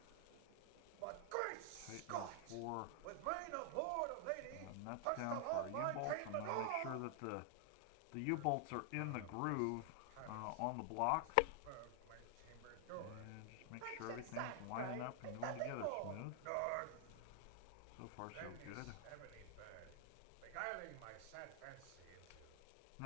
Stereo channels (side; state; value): both; different; correlation 0.00